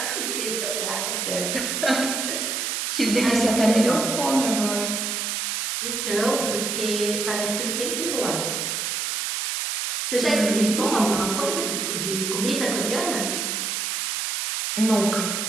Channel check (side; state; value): right; noise; hiss, 1 dB below the sound